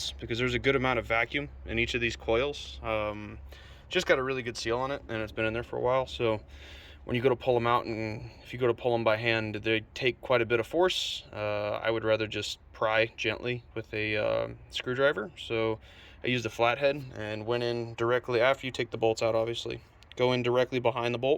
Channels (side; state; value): both; identical; correlation 1.00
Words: because there's a good amount of vacuum in each of these coils. Just got a really good seal on it, and it's been in there for a while. So when you go to pull them out, and if you go to pull them by hand, they take quite a bit of force. I would rather just pry gently with a screwdriver. So I used a flathead and went in directly after you take the bolts out, obviously. Go in directly behind the